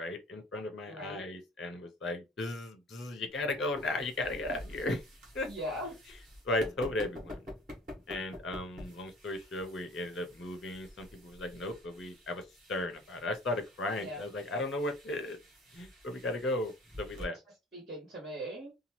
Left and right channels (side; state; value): both; normal; correlation 0.48